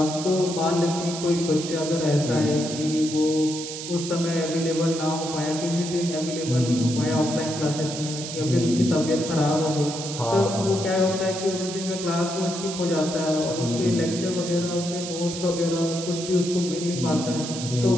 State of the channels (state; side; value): noise; right; hiss, 8 dB below the sound